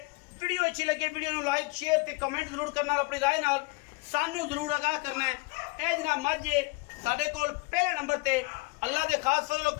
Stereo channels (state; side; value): quieter; right; 25.4 dB